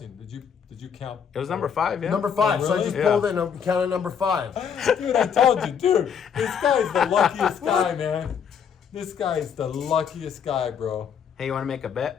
Did you count? It was number 5, yeah? Number 5. Oh, So I really? just Yeah. pulled it and counted number 5. Dude, I told you, dude. This guy's the luckiest guy, man. This guy is the luckiest guy, bro. Hey, you want to make a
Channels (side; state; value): right; quieter; 7.5 dB